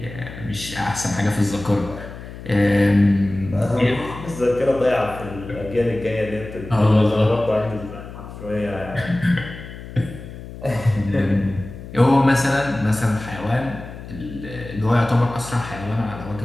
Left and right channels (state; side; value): noise; left; hum, 13 dB below the sound